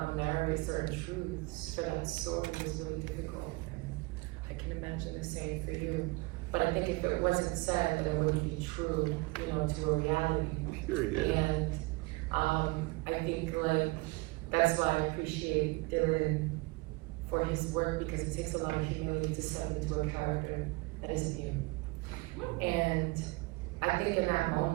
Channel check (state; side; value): quieter; left; 24.3 dB